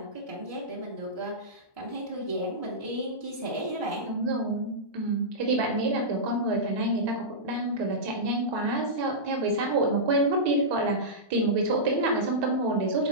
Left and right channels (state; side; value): late; left; 1.2 ms